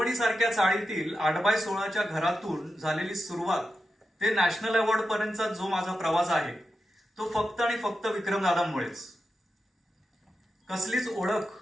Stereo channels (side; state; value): both; normal; correlation 0.89